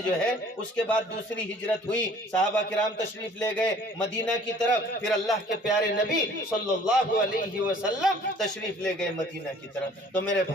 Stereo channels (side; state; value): both; normal; correlation 0.53